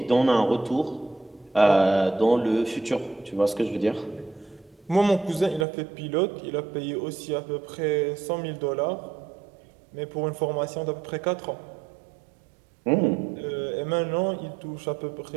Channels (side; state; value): left; drops out; at 5.7 s